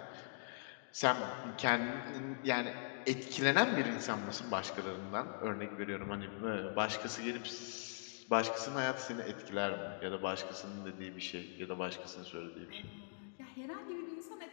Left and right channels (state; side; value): silent; right; digital silence